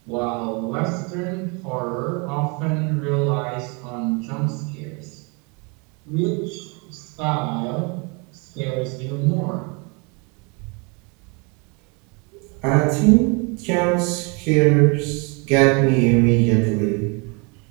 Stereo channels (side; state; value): left; quieter; 31.9 dB